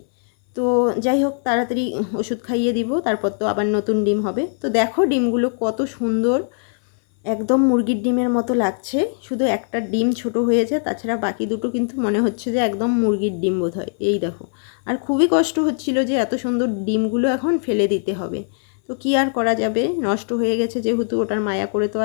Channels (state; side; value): silent; right; 61 dB below the other